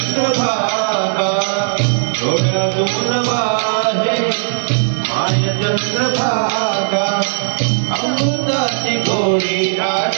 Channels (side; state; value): left; silent; digital silence